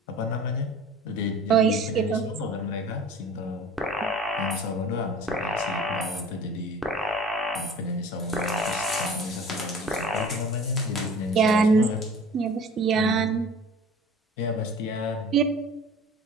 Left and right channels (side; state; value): both; normal; correlation 0.44